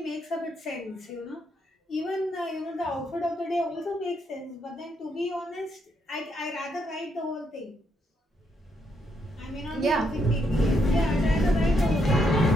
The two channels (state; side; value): normal; both; correlation 0.77